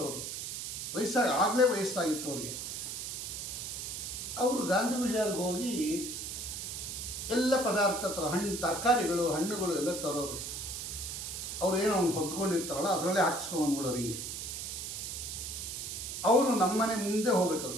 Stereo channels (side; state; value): right; noise; hiss, 6 dB below the sound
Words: ಅವರು ಆಗಲೇ ವಯಸ್ಸಾಗಿತ್ತು ಅವ್ರಿಗೆ. ಅವರು ಗಾಂಧಿ ಬಜಾರ್ಗೆ ಹೋಗಿ ಎಲ್ಲ ಪದಾರ್ಥ ತರಕಾರಿಗಳು ಹಣ್ಣುಗಳು ಎಲ್ಲ ತರೋರು. ಅವ್ರು ಏನೋ ಅವ್ನು ಹೊತ್ಕೊಂಡಿರ್ತಾರಲ್ಲ ಅದರಲ್ಲೇ ಹಾಕಿಸ್ಕೊಂಡ್ಬಿಡೋರು ಹಿಂಗೆ. ಅವರು ನಮ್ಮ ಮನೆ ಮುಂದೆ ಹೋಗ್ಬೇಕದು,